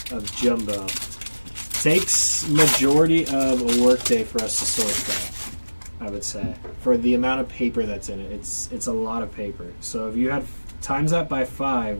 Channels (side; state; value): both; inverted; correlation -1.00